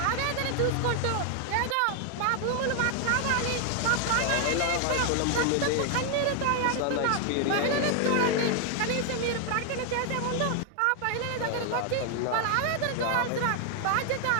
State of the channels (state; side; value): different; both; correlation 0.00